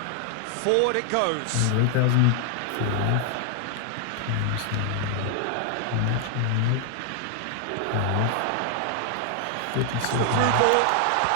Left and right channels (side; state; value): both; different; correlation 0.00